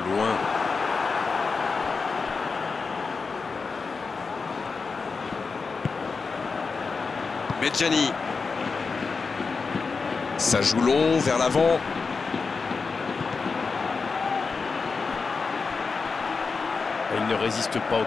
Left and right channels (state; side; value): quieter; right; 4.7 dB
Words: loin. Medjani. Ça joue long, vers l'avant. Il ne résiste pas au